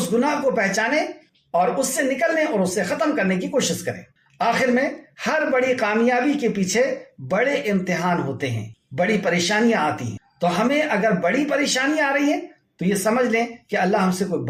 گناہ کو پہچانے اور اس سے نکلنے اور اس سے ختم کرنے کی کوشش کریں۔ آخر میں، ہر بڑی کامیابی کے پیچھے بڑے امتحان ہوتے ہیں، بڑی پریشانیاں آتی ہیں۔ تو ہمیں اگر بڑی پریشانیاں آ رہی ہیں تو یہ سمجھ لیں کہ اللہ ہم سے کوئی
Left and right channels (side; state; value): both; identical; correlation 1.00